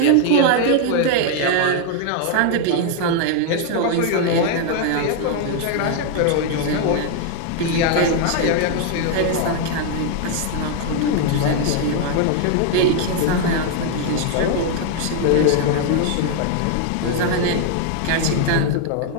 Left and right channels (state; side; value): different; both; correlation 0.00